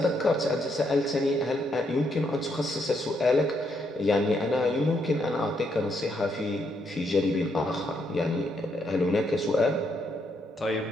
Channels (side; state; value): both; normal; correlation 0.76